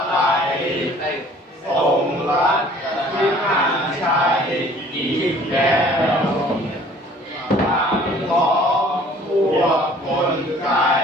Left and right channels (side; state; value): both; normal; correlation 0.53